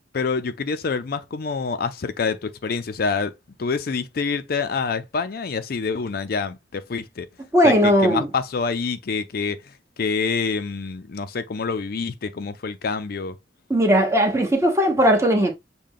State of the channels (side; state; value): both; normal; correlation 0.38